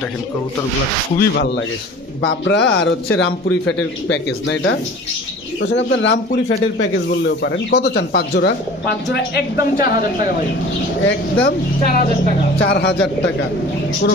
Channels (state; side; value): normal; both; correlation 0.43